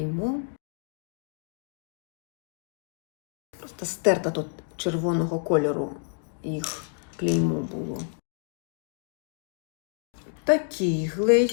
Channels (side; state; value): right; silent; 56 dB below the other